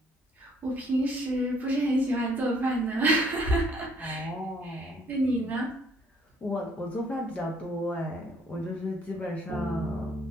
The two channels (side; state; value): both; normal; correlation 0.64